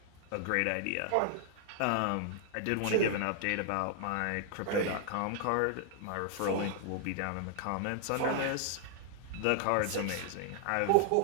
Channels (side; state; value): both; different; correlation -0.01